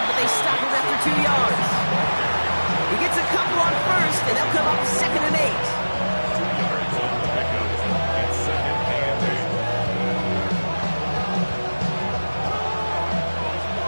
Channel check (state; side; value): inverted; both; correlation -1.00